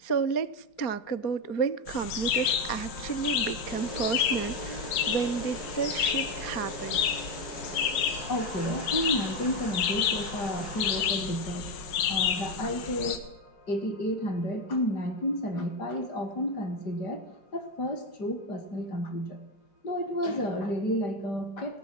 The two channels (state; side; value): late; right; 5.4 ms